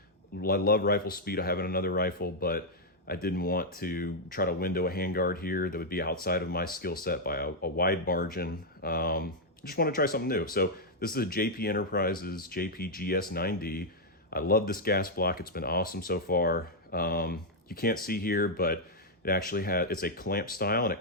I love rifle speed. I have another rifle, but I didn't want to try to window a handguard here that would be outside of my skill set by a wide margin. Just want to try something new. So this is a JP Enterprises JPGS-9D. I love this gas block. It's been awesome so far. You can't see here, but it actually it's a clamp style and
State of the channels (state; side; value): normal; both; correlation -0.03